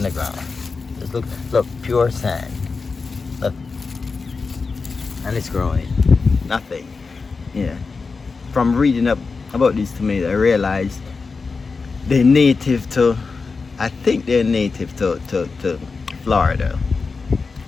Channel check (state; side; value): quieter; right; 4.5 dB